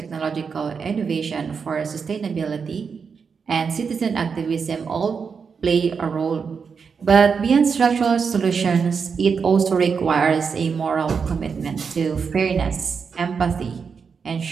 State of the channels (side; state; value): left; quieter; 5.8 dB